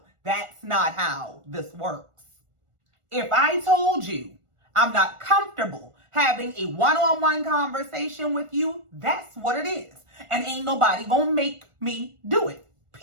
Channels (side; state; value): left; late; 1.4 ms